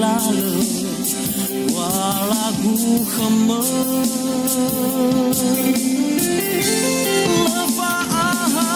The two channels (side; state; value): both; identical; correlation 1.00